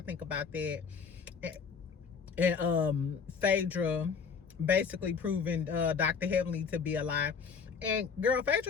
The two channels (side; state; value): right; quieter; 5.8 dB